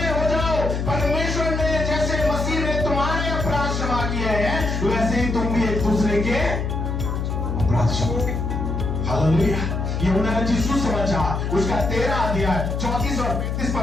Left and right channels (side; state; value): left; noise; hum, 1 dB below the sound